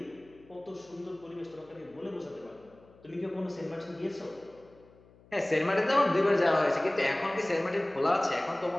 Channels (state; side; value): noise; left; hum, 27 dB below the sound